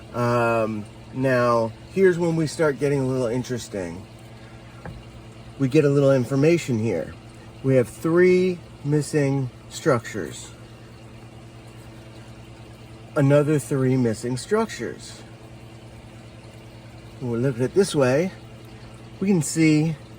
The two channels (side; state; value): both; identical; correlation 1.00